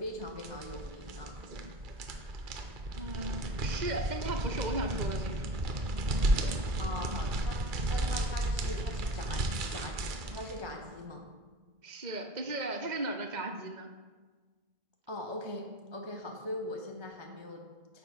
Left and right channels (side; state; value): left; late; 2.3 ms